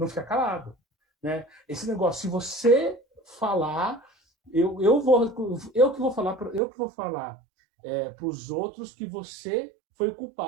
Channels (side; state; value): left; drops out; at 6.6 s